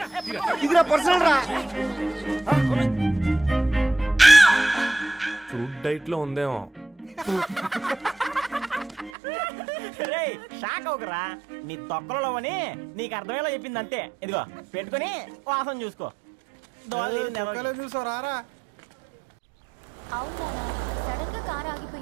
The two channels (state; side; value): drops out; left; at 9.1 s